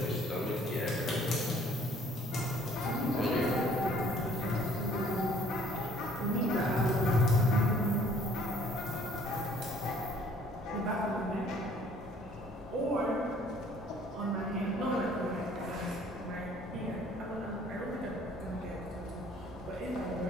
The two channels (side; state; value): both; normal; correlation 0.58